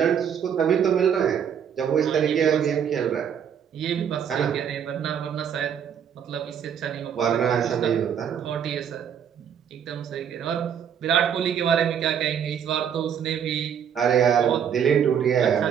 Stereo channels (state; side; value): quieter; left; 8.3 dB